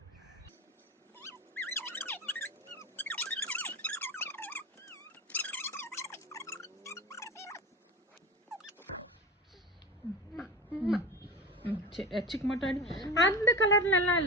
எச்சுக்கு மட்டும் அடி. அந்த கலர்ல எல்லாம்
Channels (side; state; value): both; normal; correlation 0.27